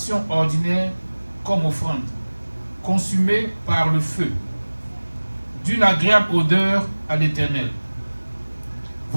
ordinaire comme offrande, consumée par le feu, d'une agréable odeur à l'Éternel.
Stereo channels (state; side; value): inverted; both; correlation -1.00